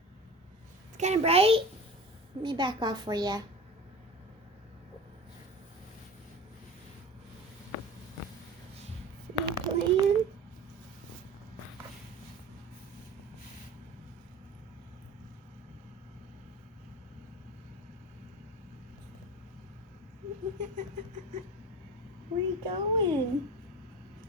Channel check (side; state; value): both; normal; correlation 0.35